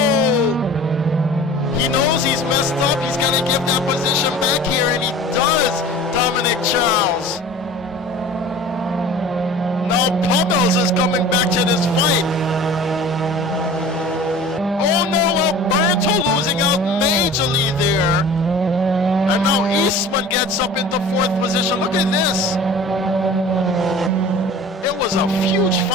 He knows he's messed up. He's gotta give that position back here, and he does, Dominic Charles. Now Pummels is coming back to this fight. Oh no, Alberto losing out majorly there. And now Eastman gets up into 4th position. Look at this. It was a huge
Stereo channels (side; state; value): both; normal; correlation 0.42